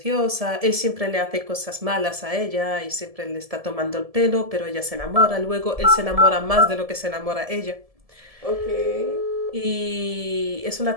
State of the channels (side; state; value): left; late; 1.7 ms